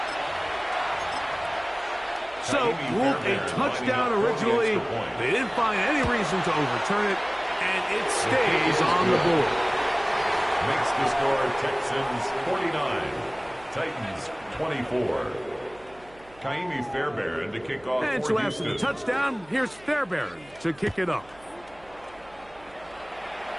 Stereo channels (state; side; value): noise; right; hum, 26 dB below the sound